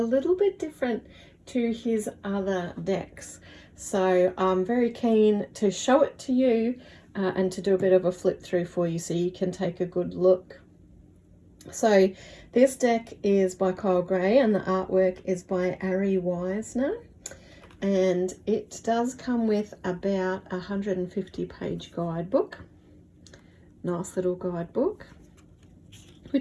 little bit different to his other decks. So I'm very keen to show it to you and to do a bit of a flip through for you so you can take a good look. So this deck is by Kyle Gray and the artwork is by Ari Weisner, and it does come with about a 150-page guidebook. Nice little guidebook,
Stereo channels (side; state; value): both; identical; correlation 1.00